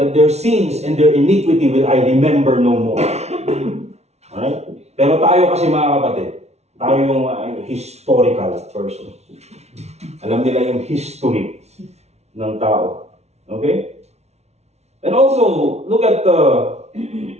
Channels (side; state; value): left; late; 0.31 ms